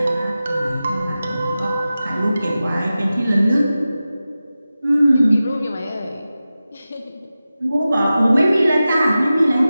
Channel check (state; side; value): inverted; both; correlation -0.94